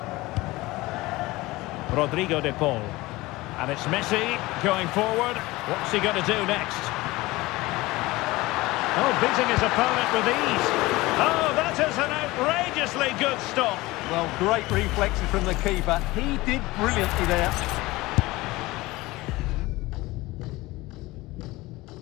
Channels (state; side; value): quieter; right; 20.2 dB